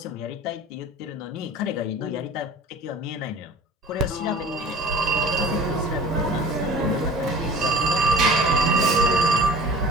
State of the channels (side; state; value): both; normal; correlation 0.42